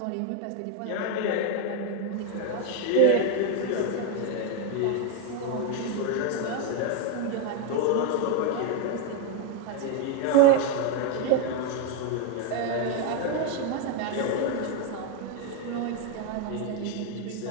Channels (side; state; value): both; different; correlation 0.01